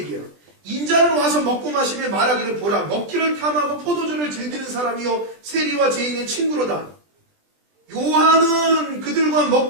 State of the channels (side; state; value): left; late; 20 ms